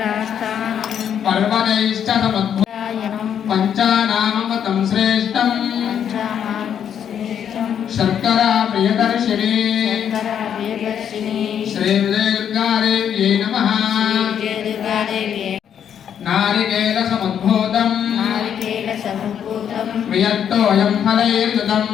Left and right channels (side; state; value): right; quieter; 8.8 dB